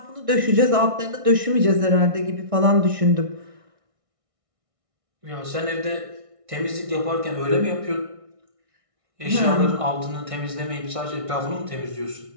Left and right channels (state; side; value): late; left; 1.6 ms